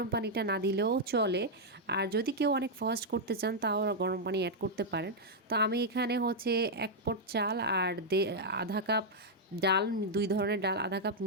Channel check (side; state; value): both; normal; correlation -0.03